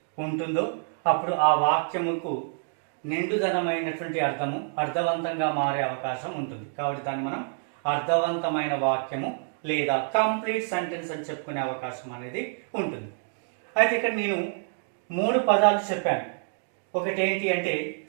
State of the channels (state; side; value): silent; left; digital silence